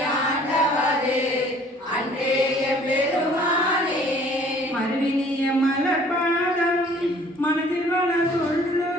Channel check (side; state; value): both; normal; correlation 0.54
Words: ஆண்டவரே அன்றே எம்பெருமானே. மறுவினிய மலர்பாதம் மனதில் வள